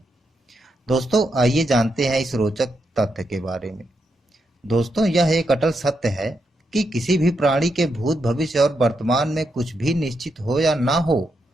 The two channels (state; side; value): normal; both; correlation 0.82